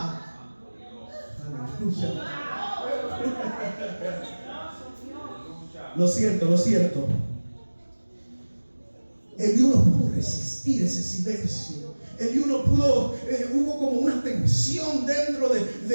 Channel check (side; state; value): both; inverted; correlation -1.00